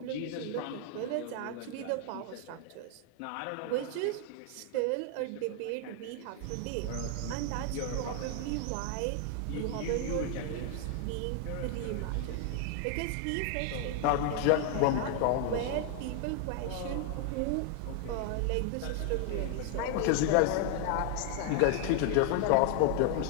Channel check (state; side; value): different; both; correlation 0.00